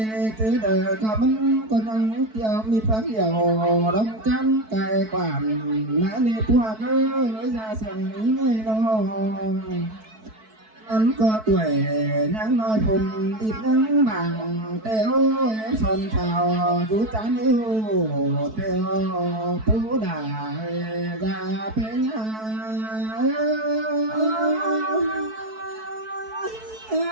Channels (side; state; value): left; late; 4.6 ms